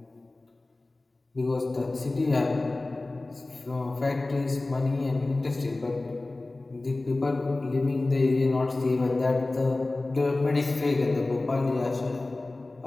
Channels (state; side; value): quieter; right; 3.0 dB